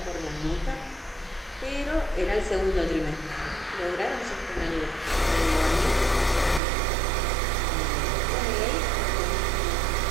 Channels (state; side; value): drops out; left; at 6.6 s